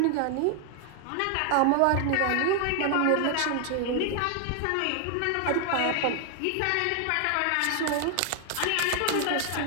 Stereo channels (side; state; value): both; different; correlation 0.00